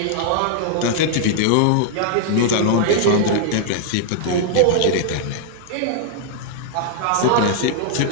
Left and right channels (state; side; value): different; both; correlation -0.01